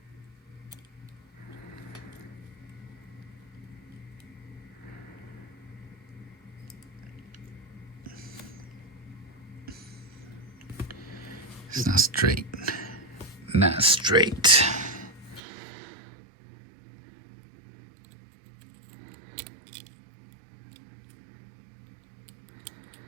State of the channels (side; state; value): left; drops out; at 15.4 s